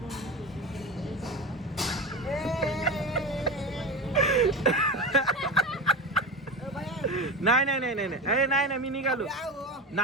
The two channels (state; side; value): normal; both; correlation 0.24